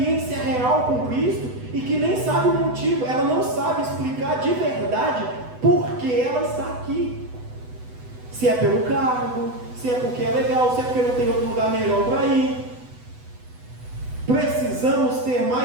real com Cristo e que nem sabe o motivo, ela não sabe explicar de verdade por que ela está aqui. Se é pelo cargo, se é porque é legal, se é porque não tem outro lugar melhor para ir. Precisamos ter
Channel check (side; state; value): left; late; 8.0 ms